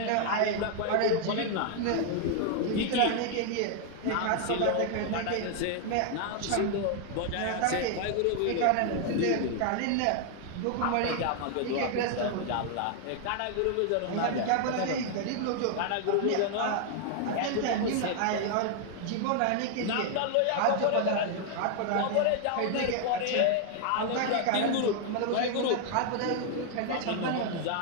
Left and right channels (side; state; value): both; different; correlation 0.00